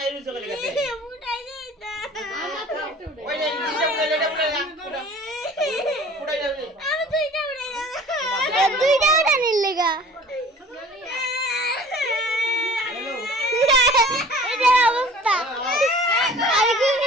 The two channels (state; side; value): normal; both; correlation 0.46